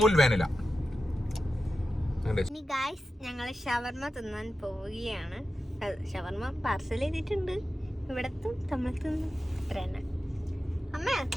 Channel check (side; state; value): both; normal; correlation 0.92